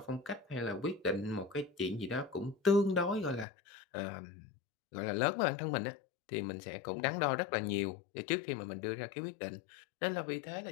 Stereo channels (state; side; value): drops out; right; at 3.5 s